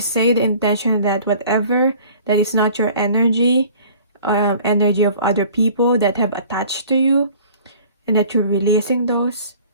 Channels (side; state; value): both; inverted; correlation -0.50